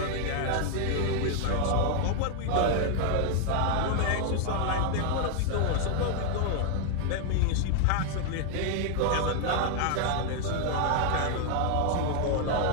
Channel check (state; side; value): different; both; correlation 0.00